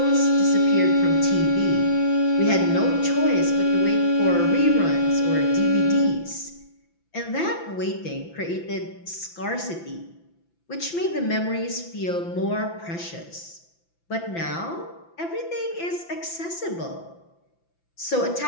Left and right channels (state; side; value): late; right; 5.9 ms